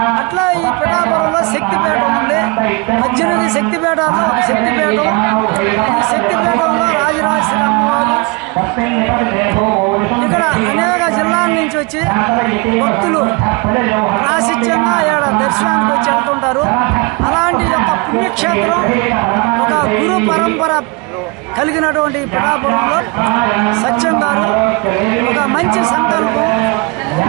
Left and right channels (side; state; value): left; quieter; 28.4 dB